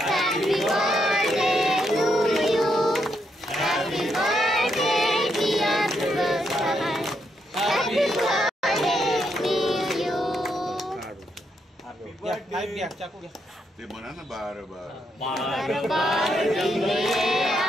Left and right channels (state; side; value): normal; both; correlation 0.79